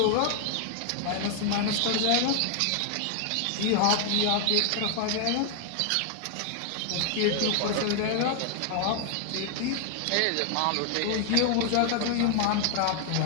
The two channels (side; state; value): both; different; correlation 0.00